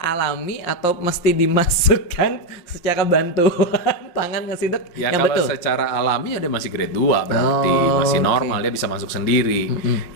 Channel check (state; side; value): late; right; 5.7 ms